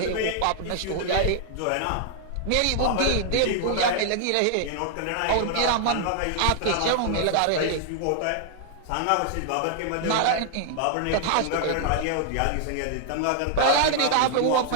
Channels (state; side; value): different; both; correlation 0.00